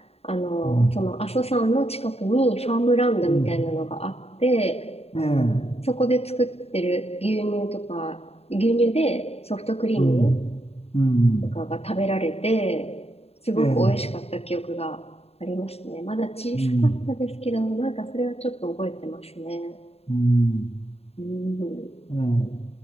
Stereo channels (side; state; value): right; late; 0.29 ms